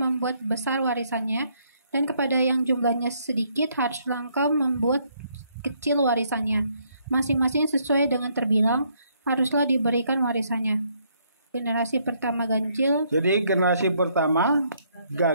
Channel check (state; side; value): inverted; both; correlation -0.70